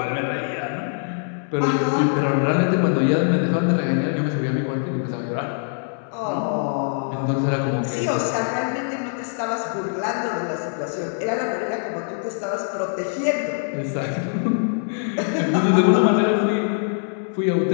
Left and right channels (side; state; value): right; silent; 63 dB below the other